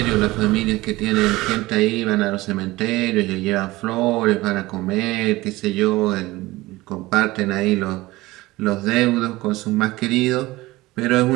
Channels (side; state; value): left; quieter; 19.4 dB